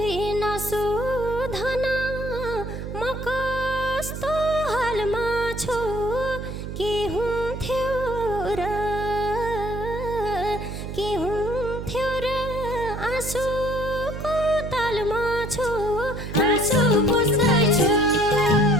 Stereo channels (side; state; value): right; noise; hum, 7 dB below the sound